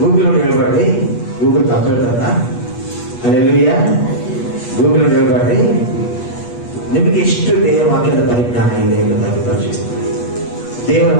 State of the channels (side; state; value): right; late; 8.3 ms